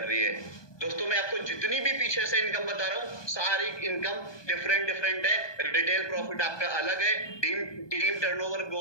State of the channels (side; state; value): right; late; 1.2 ms